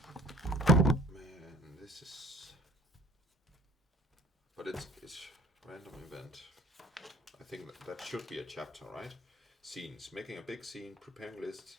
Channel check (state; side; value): normal; both; correlation 0.49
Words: Man, this is... But it's random event. I think that should be a chapter, right? Scenes. Making a big scene, preparing lists,